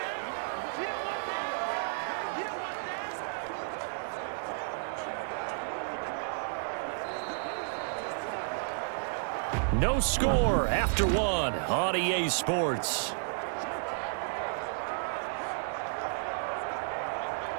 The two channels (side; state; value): left; silent; digital silence